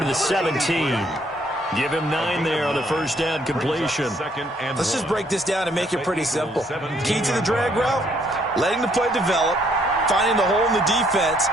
to the 17. Give him 9 there on the first down completion. Let's just break this down and make it pretty simple. Key to the drag route, letting the play develop, finding the hole in the defense,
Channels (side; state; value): both; normal; correlation 0.67